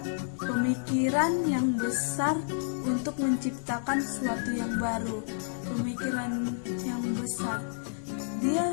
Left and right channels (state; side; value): silent; right; digital silence